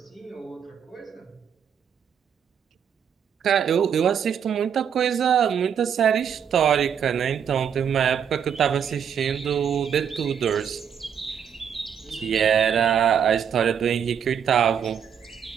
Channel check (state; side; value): quieter; left; 8.0 dB